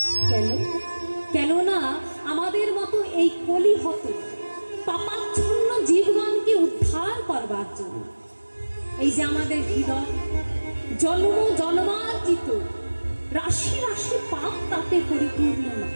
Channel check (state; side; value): inverted; both; correlation -1.00